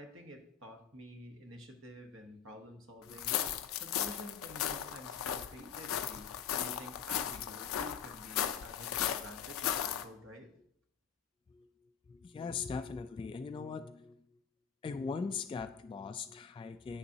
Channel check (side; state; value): right; quieter; 7.8 dB